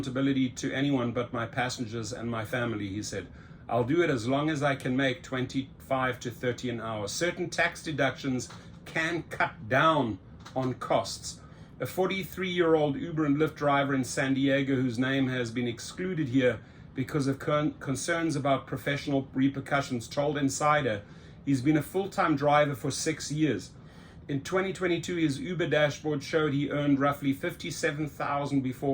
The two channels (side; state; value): both; identical; correlation 1.00